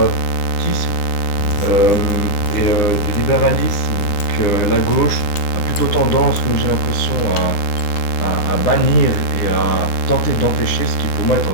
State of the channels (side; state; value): right; late; 9.9 ms